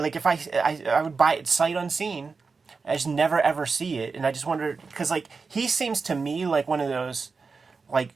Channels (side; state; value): left; quieter; 4.7 dB